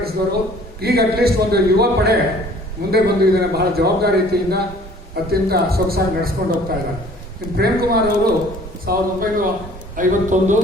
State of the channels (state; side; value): normal; both; correlation 0.52